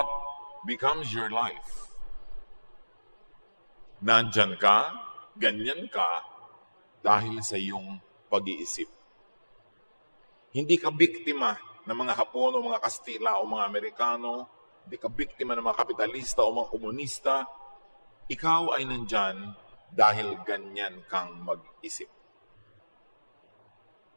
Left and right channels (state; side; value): inverted; both; correlation -1.00